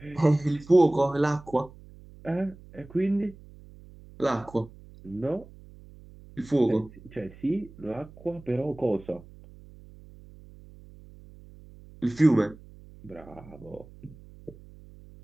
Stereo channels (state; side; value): noise; right; hum, 21 dB below the sound